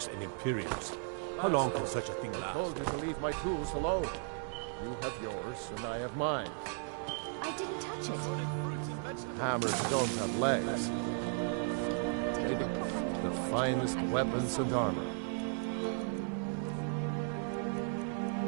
and Imperials. How long can such a thing I last? told you to leave my tools alone. You have yours, and I have mine. I didn't touch it. Hammers don't have legs. The finest weapons and armor.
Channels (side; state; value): left; silent; 54 dB below the other